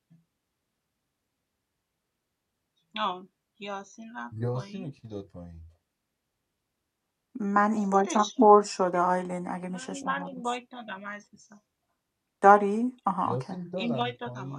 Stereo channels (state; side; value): identical; both; correlation 1.00